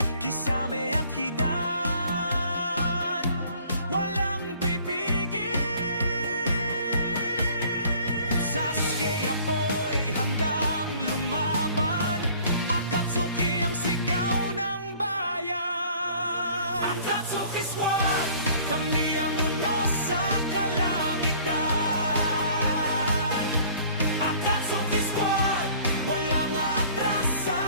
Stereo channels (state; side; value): inverted; both; correlation -0.53